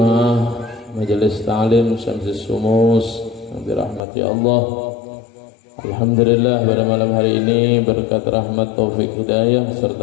Majelis Ta'lim Syamsis Sumus yang dirahmati Allah, alhamdulillah pada malam hari ini berkat rahmat taufik hidayah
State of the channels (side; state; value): right; drops out; at 4.0 s